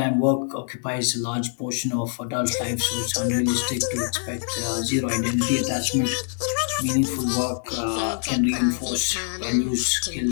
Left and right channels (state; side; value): silent; right; 62 dB below the other